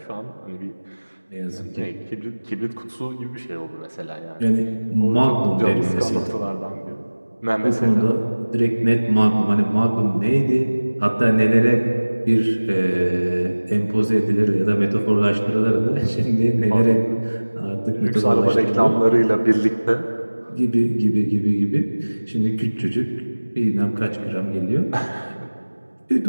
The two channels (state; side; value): inverted; both; correlation -1.00